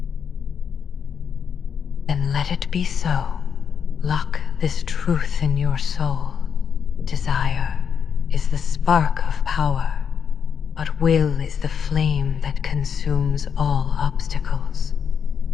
Then let it be so. Lock this truth in your soul. Desire is the spark of power, but will is the flame that consumes all obstacles.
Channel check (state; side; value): quieter; right; 7.2 dB